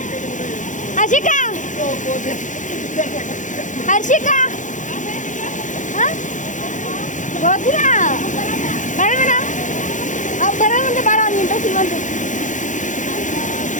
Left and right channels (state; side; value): late; right; 0.36 ms